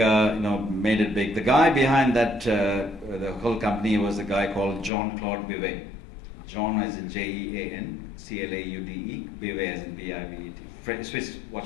made it big. The guy behind that, the whole company was a guy called Jean-Claude Bivet. John as in Jean, Claude, Bivet as in Bivet, Swiss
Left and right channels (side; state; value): right; drops out; at 4.9 s